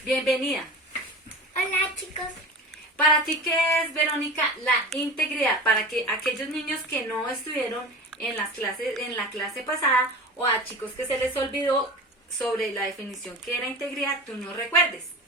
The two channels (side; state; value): both; normal; correlation 0.33